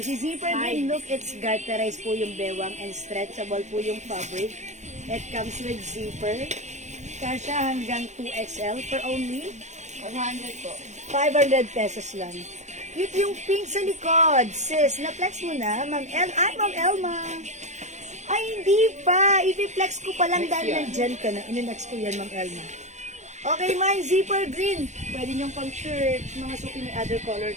zipper green, look, it's garterized po yung bewang and stretchable po yung fabric. It comes with zipper. Kasya hanggang 2XL for only 400 po. 500 pesos lang. Cute yung pink sa likod. Sis, na-flex mo na, Ma'am El. Ay, Ma'am Elma. Ay, hindi pa. I-flex ko pa lang dahil nandyan ka na. Ininex ko yan, Ma'am Elma. Okay, mine, zipper green. Pwede niyong pang shirt. Mga suki may other color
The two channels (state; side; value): late; left; 0.34 ms